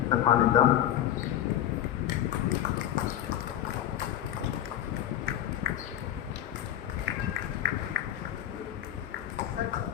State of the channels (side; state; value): right; quieter; 11.7 dB